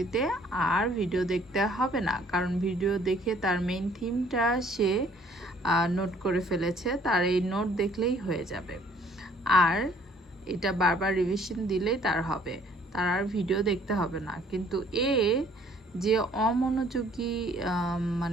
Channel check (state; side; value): normal; both; correlation 0.59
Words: আর ভিডিও দেখতে হবে না, কারণ ভিডিও দেখে তার মেইন থিমটা সে নোট করে ফেলেছে, তার এই নোট দেখলেই হয়ে যাবে। আর এটা বারবার রিভিশন দিলেই তার হবে, তার আর ভিডিও দেখতে হবে না। কিন্তু যে অমনোযোগী,